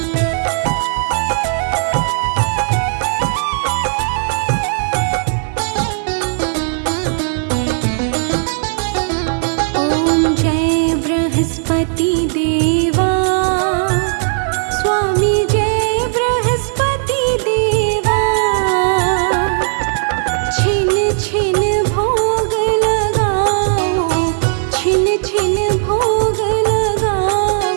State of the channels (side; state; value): left; silent; digital silence